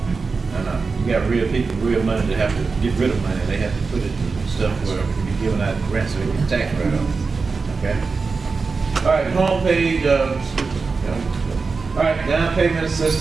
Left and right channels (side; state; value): left; quieter; 4.5 dB